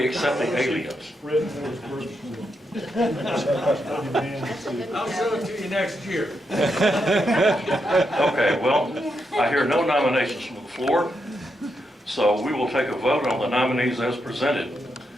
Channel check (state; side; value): normal; both; correlation 0.83